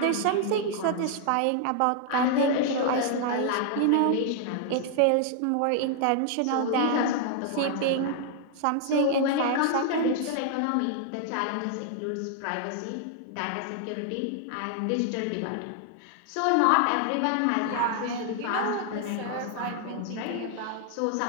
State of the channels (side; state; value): both; different; correlation 0.00